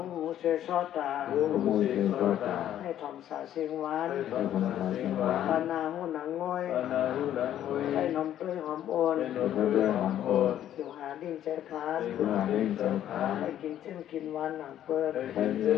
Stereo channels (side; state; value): right; quieter; 11.3 dB